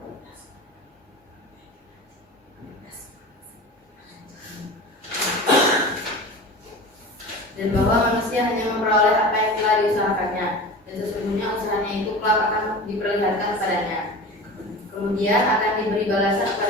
Dan bahwa manusia hanya memperoleh apa yang telah diusahakannya, dan sesungguhnya usahanya itu kelak akan diperlihatkan kepadanya. Kemudian akan diberi balasan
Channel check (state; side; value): normal; both; correlation 0.34